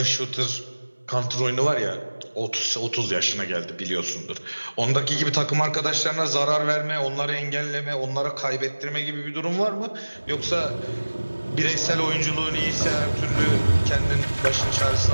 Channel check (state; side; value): inverted; both; correlation -1.00